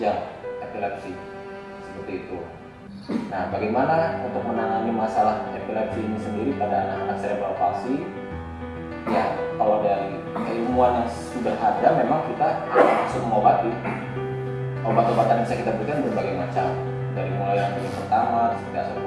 epilepsi seperti itu. Nah, bagaimana untuk menangani masalah epilepsi ini sendiri pada anak-anak cerebral palsy? Ya, kalau dari keilmuan yang sudah ada, memang kita langsung mengobati. Obat-obatan yang bisa kita berikan berbagai macam, dari mulai yang pertama seperti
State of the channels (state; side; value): identical; both; correlation 1.00